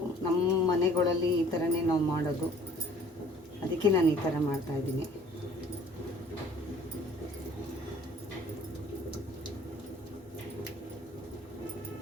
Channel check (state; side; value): normal; both; correlation 0.53